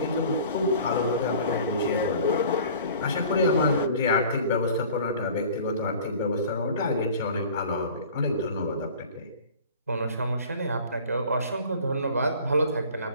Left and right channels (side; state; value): both; inverted; correlation -0.45